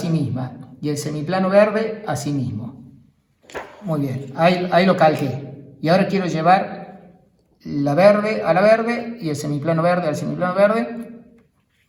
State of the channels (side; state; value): both; identical; correlation 1.00